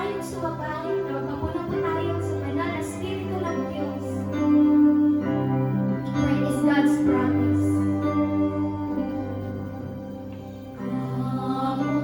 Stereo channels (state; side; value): identical; both; correlation 1.00